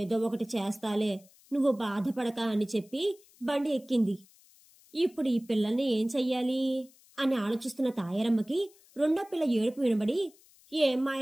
ఒకటి చేస్తాలే, నువ్వు బాధపడక అని చెప్పి బండి ఎక్కింది. ఇప్పుడు ఈ పిల్లల్ని ఏం చెయ్యాలి అని ఆలోచిస్తున్న తాయారమ్మకి రెండో పిల్ల ఏడుపు వినబడి, ఏం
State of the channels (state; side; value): noise; left; hiss, 28 dB below the sound